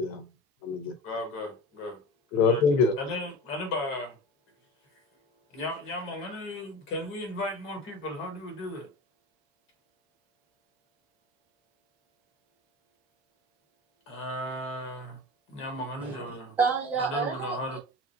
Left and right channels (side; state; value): both; normal; correlation 0.33